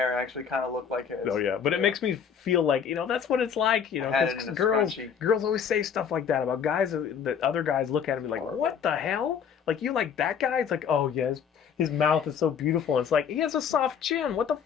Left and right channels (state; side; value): quieter; right; 7.4 dB